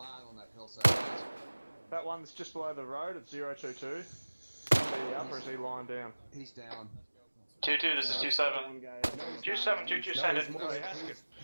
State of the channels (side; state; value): both; inverted; correlation -1.00